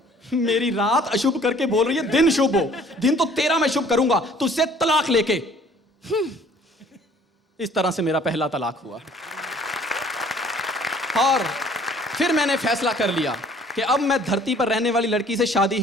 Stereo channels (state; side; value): normal; both; correlation 0.55